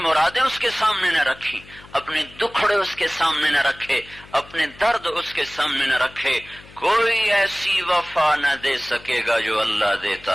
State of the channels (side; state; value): left; noise; hum, 22 dB below the sound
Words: اس کے سامنے نہ رکھی، اپنے دکھڑے اس کے سامنے نہ رکھے، اپنے درد اس کے سامنے نہ رکھے. کوئی ایسی وفا نہ دے سکے گا جو اللہ